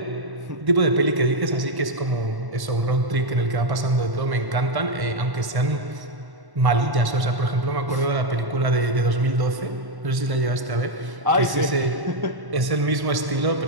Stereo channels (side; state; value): left; late; 1.1 ms